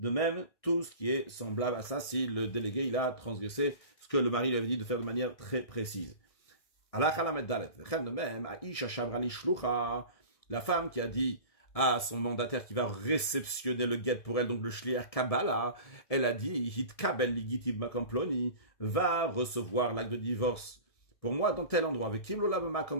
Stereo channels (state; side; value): late; right; 1.7 ms